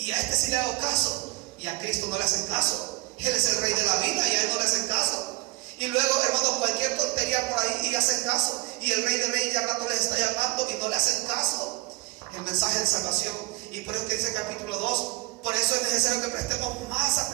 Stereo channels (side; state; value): left; quieter; 21.9 dB